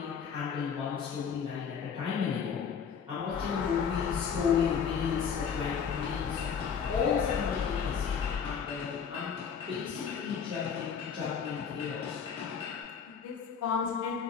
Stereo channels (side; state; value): right; quieter; 6.8 dB